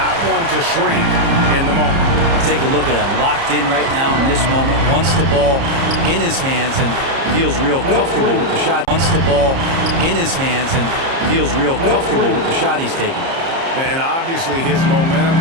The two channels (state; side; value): late; left; 30 ms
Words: one to shrink in the moment. Take a look at him, locked in right now in this moment. Wants the ball in his hands and feels real comfortable with the shot. Wants the ball in his hands and feels real comfortable with the shot he's taking. And obviously his momentum